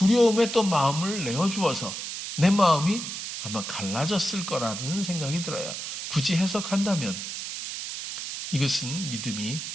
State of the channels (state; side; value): noise; right; hiss, 6 dB below the sound